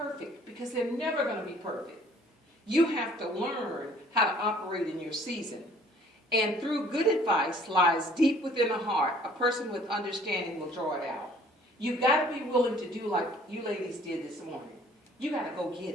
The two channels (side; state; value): both; normal; correlation 0.56